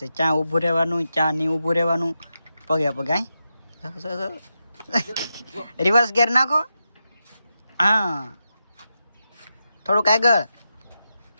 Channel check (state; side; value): inverted; both; correlation -0.88